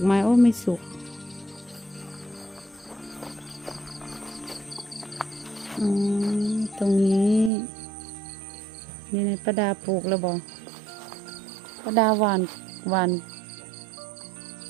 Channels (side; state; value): left; drops out; at 7.5 s